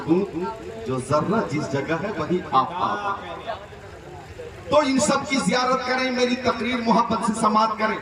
جو ذرہ جس جگہ ہے وہی آفتاب ہے۔ تو ان سب کی زیارت کریں، میری تقریر محبت سے سماعت کریں۔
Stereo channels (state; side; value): identical; both; correlation 1.00